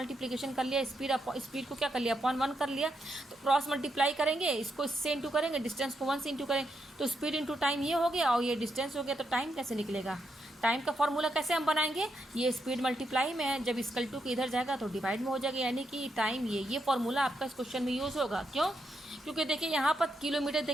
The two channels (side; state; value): both; normal; correlation 0.81